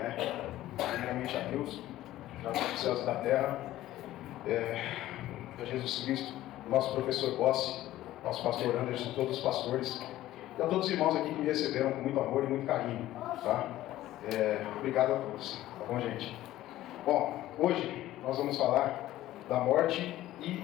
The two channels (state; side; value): quieter; right; 14.8 dB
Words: Primeiramente a Deus, já dos céus e da terra. A Jesus Cristo, nosso professor Bossi, nosso pastor Anderson, todos os pastores. E a todos os irmãos aqui que me receberam com muito amor e muito carinho. Tá? Obrigado a todos. Tá bom, gente? Bom, hoje nós vamos falar da morte e